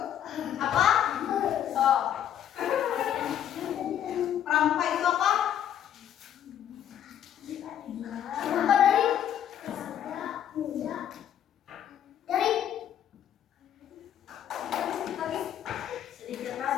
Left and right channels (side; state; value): right; quieter; 10.2 dB